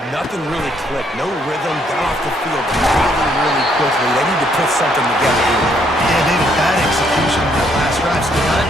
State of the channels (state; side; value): normal; both; correlation 0.69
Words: nothing really clicked. No rhythm, got off the field really quickly. They need to put something together here. Yeah, David, bad execution on that last drive, so they got